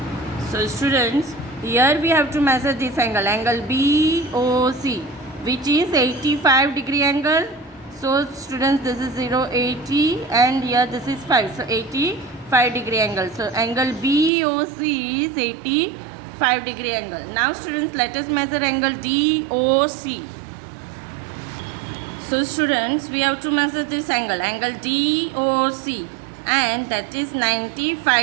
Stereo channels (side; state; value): left; drops out; at 14.3 s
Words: So students, here we have to measure this angle BOC, which is 85 degree angle. So students, this is 0, 80, and here this is 5. So 85 degree angle. So angle BOC is 85 degree angle. Now students, let us measure angle DOC. So students, we have to measure this angle DOC, and that is